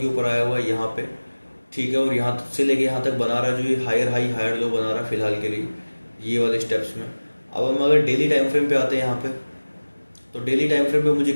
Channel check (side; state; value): both; inverted; correlation -1.00